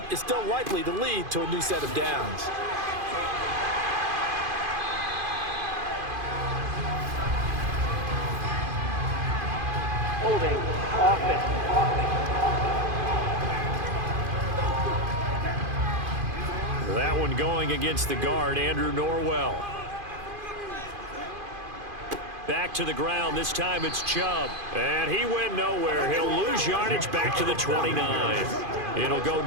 is still likely to lead to a new set of downs. Holding offense. That one going against the guard, Andrew Norwell. Back to the ground. This time it's Chubb. And he went nowhere. He'll lose yardage back to the 29. It'll go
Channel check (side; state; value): left; late; 2.5 ms